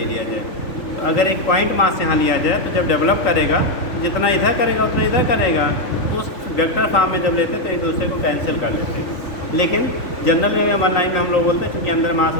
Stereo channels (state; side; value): late; right; 3.8 ms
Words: लिया जाए, तो अगर एक पॉइंट मास यहाँ लिया जाए तो जब डेवलप करेगा जितना इधर करेगा उतना इधर करेगा, तो उस वेक्टर फॉर्म में जब लेते तो एक दूसरे को कैंसिल कर लेते हैं। लेकिन जनरल में वन लाइन में हम लोग बोलते हैं क्योंकि अंदर मास